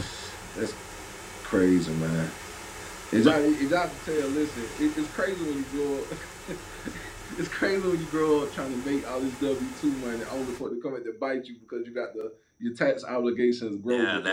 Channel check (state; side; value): identical; both; correlation 1.00